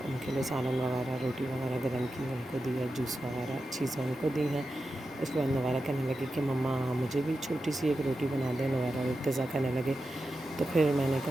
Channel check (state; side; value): normal; both; correlation 0.90